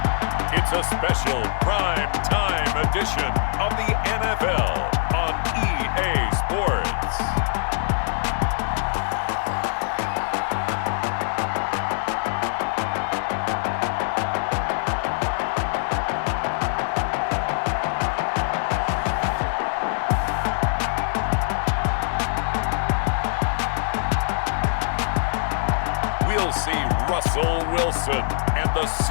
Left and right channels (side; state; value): right; silent; 63 dB below the other